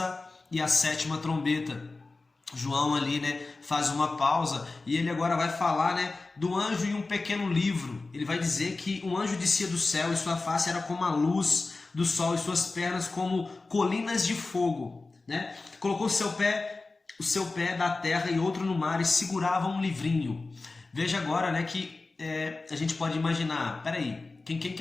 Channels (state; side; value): quieter; right; 3.6 dB